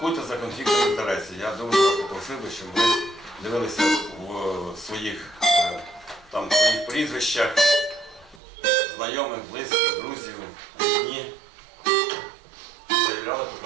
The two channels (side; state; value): left; drops out; at 8.4 s